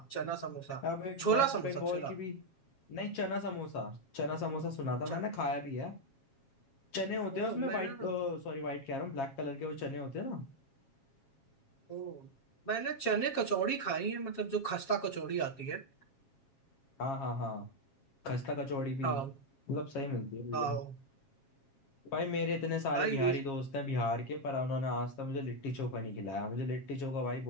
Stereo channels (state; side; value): late; right; 7.4 ms